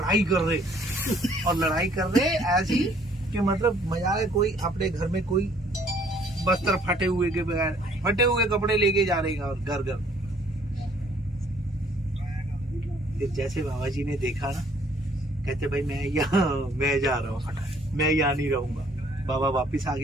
कर रहे, और लड़ाई कर रहे ऐसी कि मतलब मजा है। कोई अपने घर में कोई बस्तर फटे हुए के बगैर फटे हुए कपड़े लेके जा रहे हैं और घर घर। फिर जैसे बाबा जी ने देखा ना, कहते भाई मैं जा रहा हूँ, मैं यहाँ नहीं रहूंगा। बाबा वापिस आ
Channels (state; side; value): normal; both; correlation 0.61